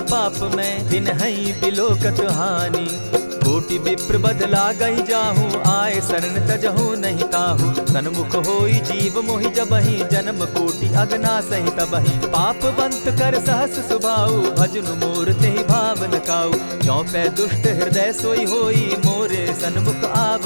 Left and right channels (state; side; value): inverted; both; correlation -1.00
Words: पाप में, बिनहि बिलोकत हानि। कोटि विप्र बदला गई जाहू, आए शरण तजहू नहीं ताहू। सन्मुख होई जीव मोहि जबहि, जन्म कोटि अगना सहि तबहि। पापवंत कर सहस सुभाऊ, भजनु मोर तेहि भावन काऊ। चौपै दुष्ट हृदय सोई होई, मोरे सन्मुख